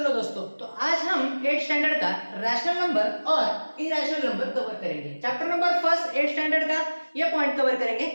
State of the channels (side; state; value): both; inverted; correlation -1.00